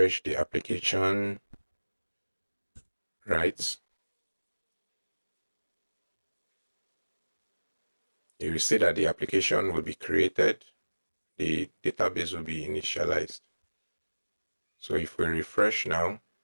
the application, right? You will see that the application will be created, the database will be initialized. So if we refresh now,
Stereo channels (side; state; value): both; inverted; correlation -1.00